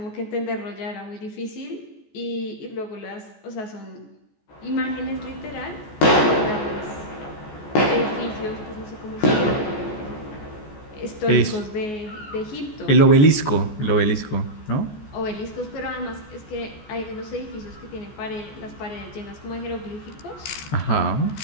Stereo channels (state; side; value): late; right; 14 ms